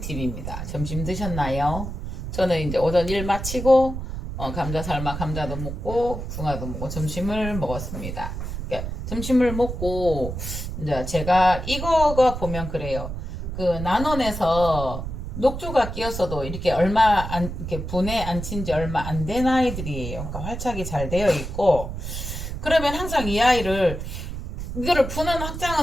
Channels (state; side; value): noise; right; rumble, 6 dB below the sound